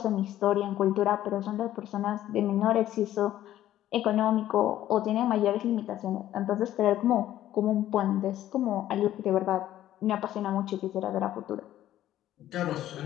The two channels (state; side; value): quieter; right; 12.9 dB